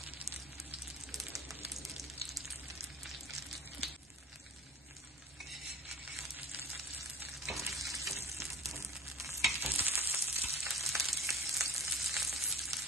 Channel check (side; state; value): both; normal; correlation 0.41